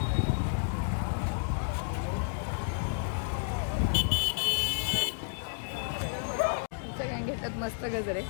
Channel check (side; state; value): right; silent; digital silence